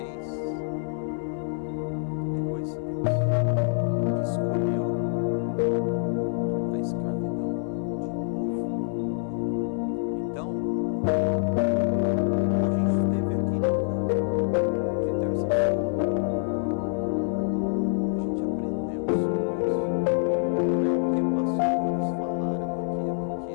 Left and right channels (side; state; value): right; silent; 61 dB below the other